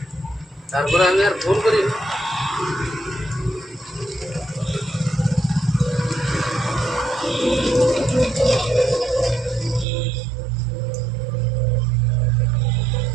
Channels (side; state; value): left; drops out; at 9.9 s